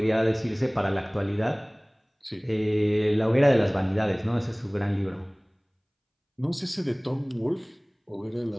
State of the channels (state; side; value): identical; both; correlation 1.00